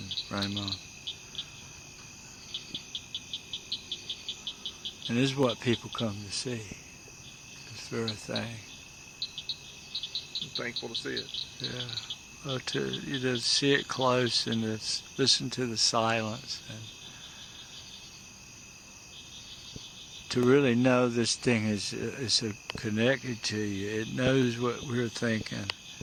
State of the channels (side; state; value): both; identical; correlation 1.00